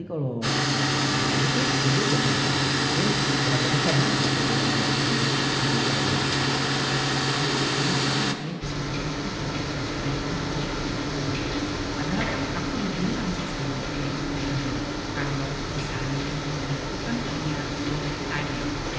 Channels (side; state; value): both; identical; correlation 1.00